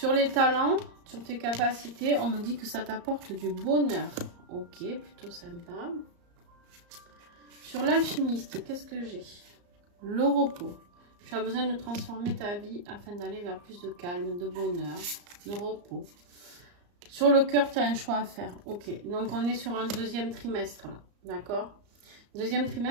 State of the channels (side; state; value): left; late; 34 ms